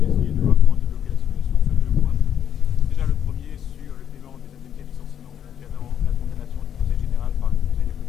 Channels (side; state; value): right; quieter; 9.3 dB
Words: de voir comment débloquer la situation sur deux points. Déjà, le premier sur le paiement des indemnités de licenciement concernant la condamnation du Conseil général par le Conseil des